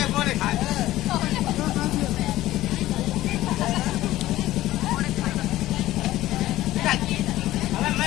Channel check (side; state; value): right; quieter; 15.6 dB